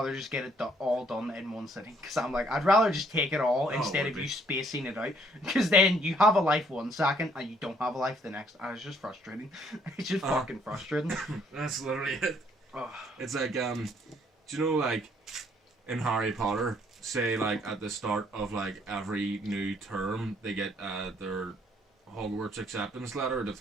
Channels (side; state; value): both; normal; correlation 0.65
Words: just get it all done in one sitting. Because I'm like, I'd rather just take it all instead of you spacing it out. Because then you have a life one second and you don't have a life the next. And it's just frustrating. It's just fucking frustrating. That's literally it. Oh. It's like, do you know, like, in Harry Potter, say, like, at the start of, like, every new term, they get their Hogwarts acceptance letter to